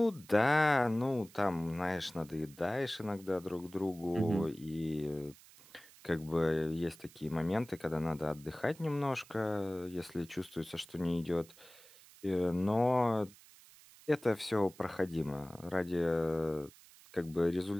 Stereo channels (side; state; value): right; noise; hiss, 23 dB below the sound